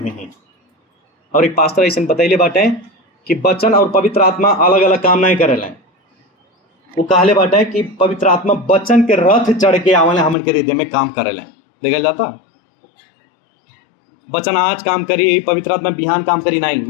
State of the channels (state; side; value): drops out; right; at 10.4 s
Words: हुई। और एक पास्टर ऐसा बतैले बाटे कि वचन और पवित्र आत्मा अलग अलग काम नहीं करेले। वो कहले बाटे कि पवित्र आत्मा वचन के रथ चढ़ के आवले हमन के हृदय में काम करेले। देखा जाता वचन आज काम करी, पवित्र आत्मा बिहान काम करी नहीं,